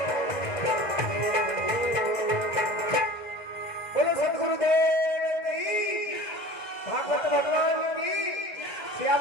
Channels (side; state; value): right; late; 2.0 ms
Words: बोलो सदगुरुदेव की, भागवत भगवान की,